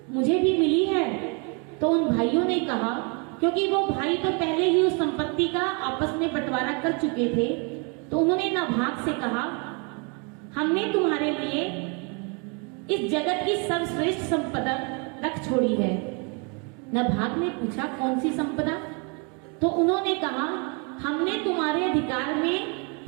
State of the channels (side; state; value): left; quieter; 34.5 dB